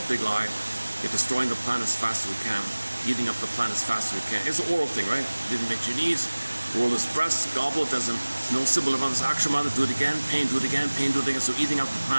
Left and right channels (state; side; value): inverted; both; correlation -1.00